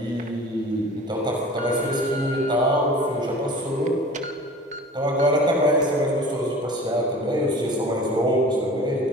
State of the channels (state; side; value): normal; both; correlation 0.42